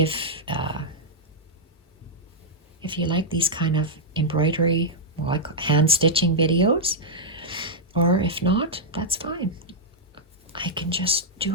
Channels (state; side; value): normal; both; correlation -0.06